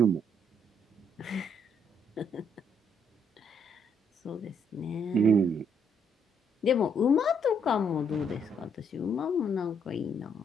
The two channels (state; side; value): normal; both; correlation 0.71